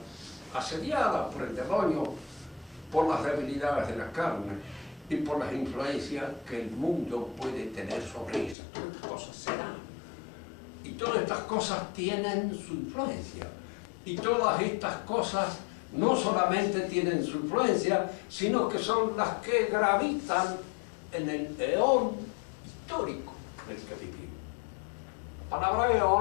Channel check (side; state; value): right; drops out; at 8.6 s